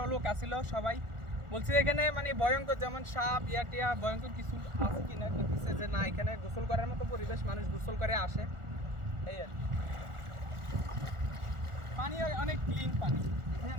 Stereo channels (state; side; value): late; left; 1.4 ms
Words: লোক আসছিল, সবাই বলছে এখানে মানে ভয়ঙ্কর যেমন সাপ টিয়া ভয়ঙ্কর কিছু আছে কিনা, বলতেছে যে না, এখানে গোসল করার মতো পরিবেশ, মানুষ গোসল করে আসে। এই আর কি। পানি অনেক ক্লিন পানি, এখানে